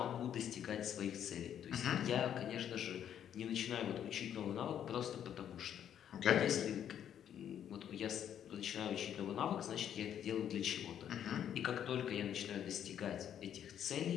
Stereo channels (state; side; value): quieter; right; 9.7 dB